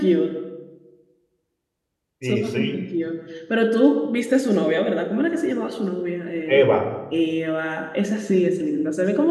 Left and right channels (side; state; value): both; identical; correlation 1.00